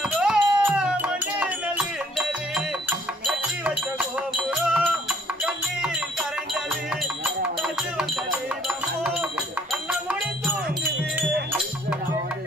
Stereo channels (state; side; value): normal; both; correlation 0.61